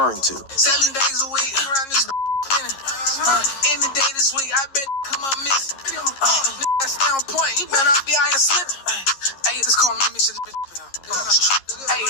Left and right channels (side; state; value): right; late; 11 ms